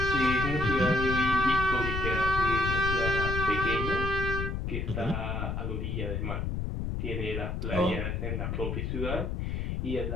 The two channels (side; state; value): left; noise; rumble, 2 dB below the sound